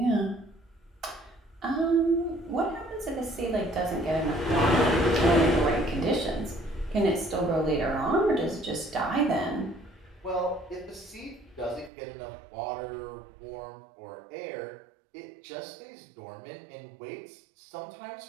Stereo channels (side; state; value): left; drops out; at 11.9 s